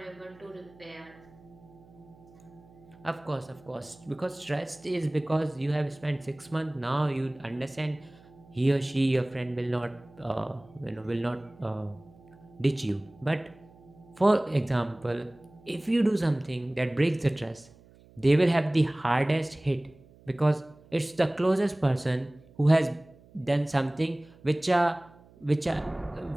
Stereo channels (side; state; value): right; noise; hum, 25 dB below the sound